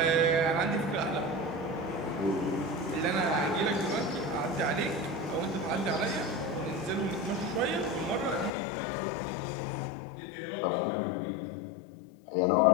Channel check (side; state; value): right; drops out; at 8.5 s